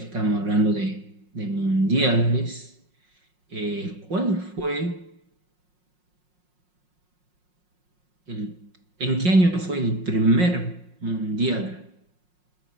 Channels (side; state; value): left; late; 5.5 ms